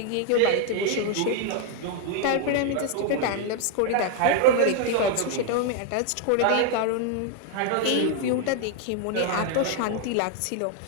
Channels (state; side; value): different; both; correlation 0.00